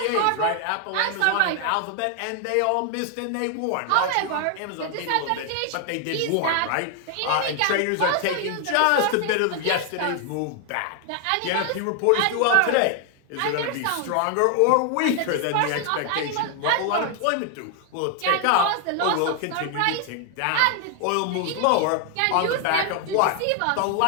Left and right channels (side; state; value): both; different; correlation 0.00